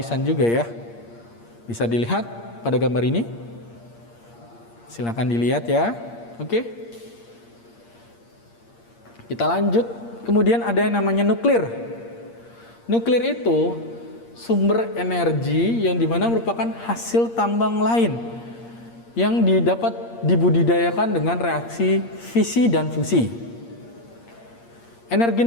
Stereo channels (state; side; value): late; right; 8.6 ms